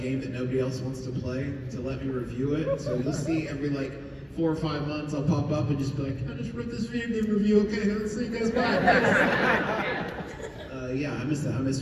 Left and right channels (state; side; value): identical; both; correlation 1.00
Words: that nobody else wants to play to let me review it. So you'll see every like 4 or 5 months I'll pop up and just be like, I just wrote this video game review. Okay, let's see you guys back. Yeah, I miss that. I miss